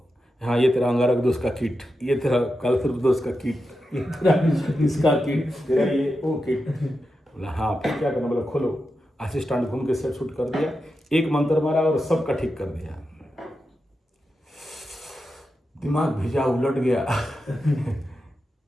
हाँ, ये तेरा अंगारक दोष का किट, ये तेरा कालसर्प दोष का किट, ये तेरा इसका किट, तेरा ये वो किट। बोला हाँ, फिर क्या करना? बोला खोलो। असिस्टेंट घूम के सेट शूट कर दिया, एक मंत्र मारा और सबका ठीक कर दिया। दिमाग भेजा, उलट गया।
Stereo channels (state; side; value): normal; both; correlation 0.89